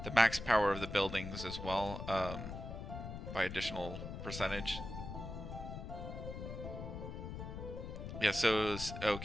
the max power of the buildings as well, by additional percentage. Yeah. So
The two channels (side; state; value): left; noise; rumble, 7 dB below the sound